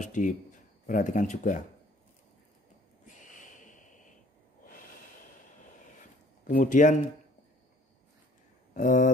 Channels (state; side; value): normal; both; correlation 0.56